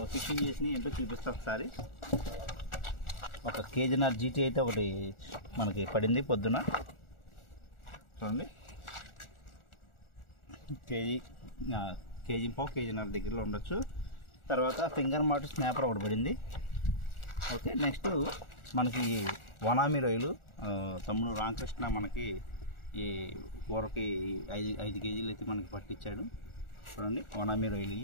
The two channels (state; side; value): late; right; 1.4 ms